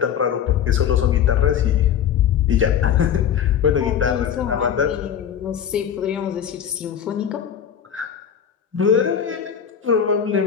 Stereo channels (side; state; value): right; quieter; 8.6 dB